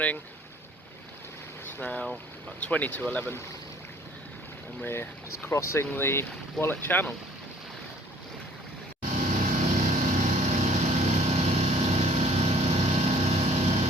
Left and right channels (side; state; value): both; normal; correlation 0.56